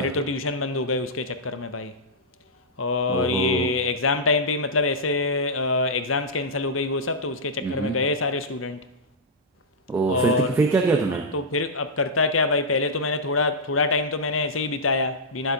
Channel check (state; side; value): normal; both; correlation -0.10